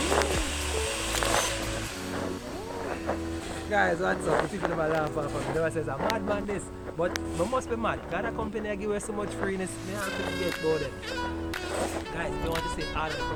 Guys, what's up? The people never laugh at me. They always say, I'm mad man this. But we must be mad. Got a company that give us so much freeness. Me have to get about it. Guys, if you want to see all of the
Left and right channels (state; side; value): identical; both; correlation 1.00